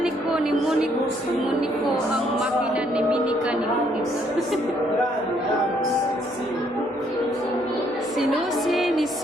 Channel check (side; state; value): left; noise; hum, 28 dB below the sound